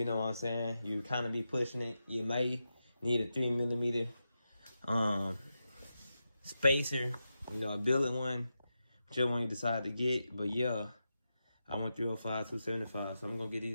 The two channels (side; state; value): both; inverted; correlation -0.89